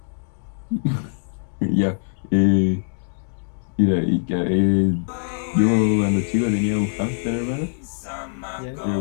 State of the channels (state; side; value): silent; right; digital silence